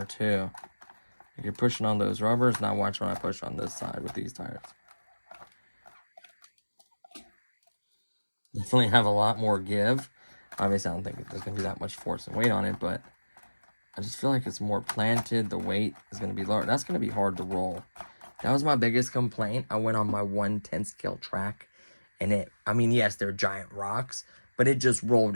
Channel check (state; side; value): inverted; both; correlation -1.00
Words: too. Like you're pushing on those rubbers. Now watch when I push on this side with these tires. Definitely have a lot more give. Obviously, I don't think there's going to be that much force and weight on it, but I just feel like it's more planted. The weight is going to be lower. That's going to be hard to roll. That was my biggest complaint. I went on my 1/10 scale track, and I mean, yes, they're giant rocks, but it just